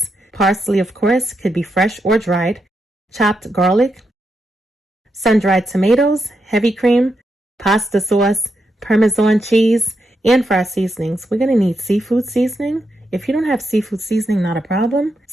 parsley, of course, could be fresh or dried, chopped garlic, sun-dried tomatoes, heavy cream, pasta sauce, parmesan cheese, and for our seasonings, we're going to need seafood seasoning. If you don't have seafood seasoning, not a problem.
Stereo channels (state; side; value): normal; both; correlation 0.84